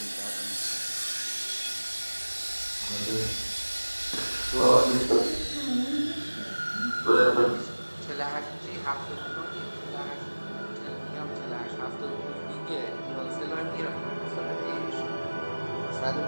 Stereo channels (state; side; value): inverted; both; correlation -1.00